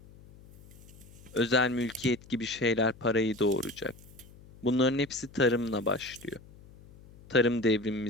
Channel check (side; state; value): left; noise; hum, 22 dB below the sound